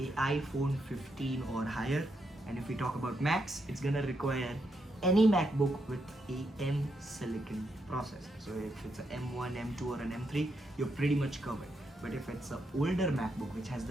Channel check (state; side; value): normal; both; correlation 0.80